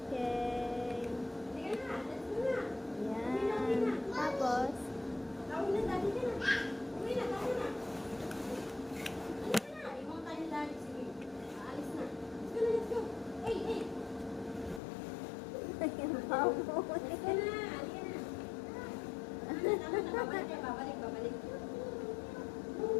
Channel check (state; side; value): drops out; right; at 14.8 s